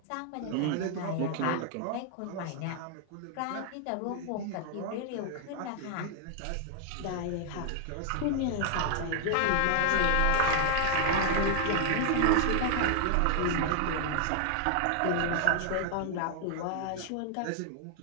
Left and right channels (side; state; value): both; different; correlation 0.00